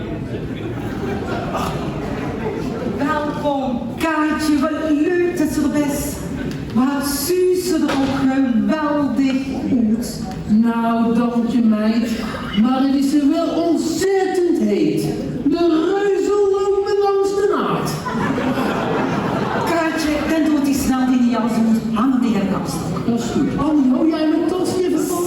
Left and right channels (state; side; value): identical; both; correlation 1.00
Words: Nou, dank je meid, maar het is er wel ontzettend heet. De reuzen lopen langs de naad. Kaartje, dan doet die snel die niet als moet hangen tegen de kast. Dat is goed. Annie, hou jij mijn tas even vast?